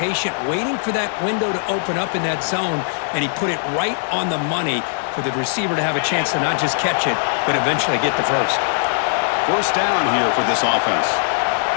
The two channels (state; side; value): silent; right; digital silence